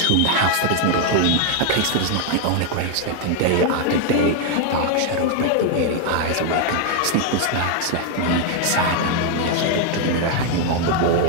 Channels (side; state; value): both; different; correlation 0.00